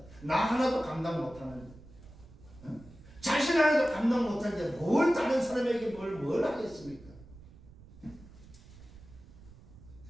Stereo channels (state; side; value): noise; right; rumble, 20 dB below the sound